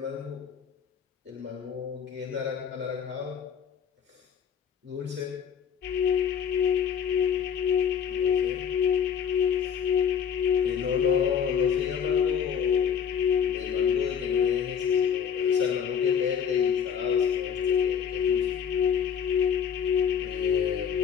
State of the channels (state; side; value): quieter; right; 7.6 dB